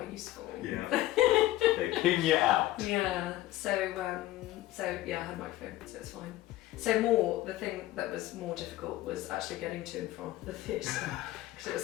useful. Yeah. They ping you out. Yeah. So I had a microphone, so it's fine. So the thing that was more difficult was actually getting to and from the theatre, because it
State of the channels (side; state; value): right; quieter; 15.8 dB